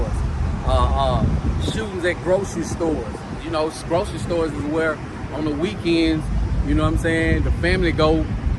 shootings at grocery stores. You know, grocery stores is where on the weekends, you know what I'm saying, the family go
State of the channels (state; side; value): identical; both; correlation 1.00